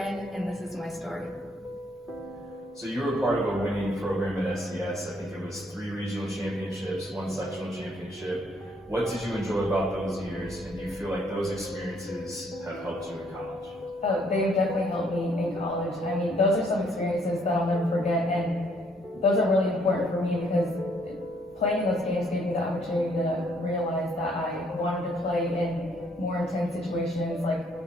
and this is my story. So you were part of a winning program at SCS. I think it was 3 regional championships, 1 sectional championship. What did you enjoy about those years, and do you feel like those experiences have helped you in college? Oh, they definitely helped me in college. I mean, those are some experiences that I'll never forget, and those are really important for me because playing those games gave me the opportunity to realize that I wanted to play in more intense situations like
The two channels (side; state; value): both; normal; correlation 0.67